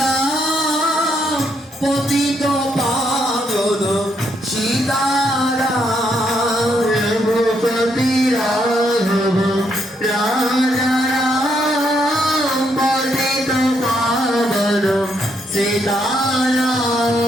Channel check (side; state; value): both; normal; correlation 0.75